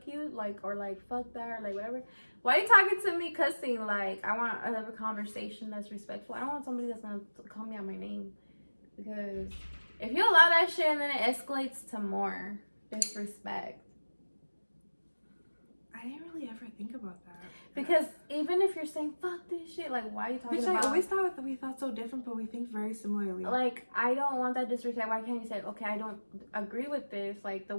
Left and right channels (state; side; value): inverted; both; correlation -1.00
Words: you, like, or like fuck that, or like whatever. Why are you talking to me cussing? Like, I want to have a conversation that's respectful. I don't want somebody that's gonna call me out my name, because if you allow that shit and then it escalates to more disrespect. I didn't really ever think about that. Because even if you're saying fuck this shit, like, why are you talking about? I always thought that we thought so different, but we think very similarly. Like, I don't want that disrespect. Why can't you say, okay, I don't agree with this? Like, the